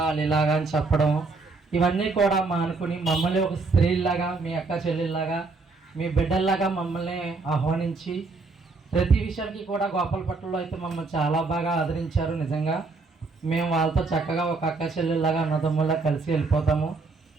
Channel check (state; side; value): quieter; left; 3.9 dB